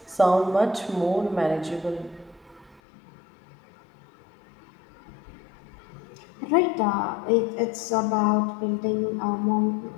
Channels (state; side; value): drops out; right; at 2.8 s